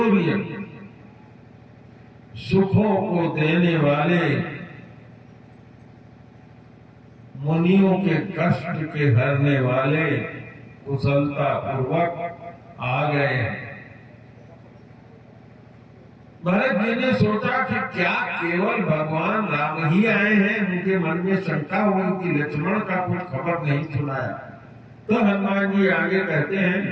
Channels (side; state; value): both; identical; correlation 1.00